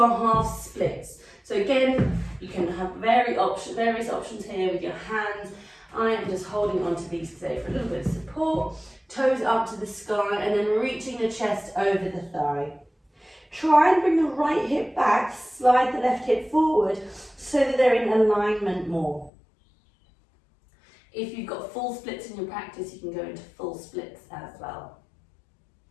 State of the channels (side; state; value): right; drops out; at 19.3 s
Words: half splits. So again, you can have various options here with your hands. I am just holding on to these today for a little bit of support. Toes up to the sky, and then reaching the chest over the thigh. Try and bring the right hip back, slide the left hip forward, so that they're in alignment more. If you've got full splits in your practice, you can go into full splits as well.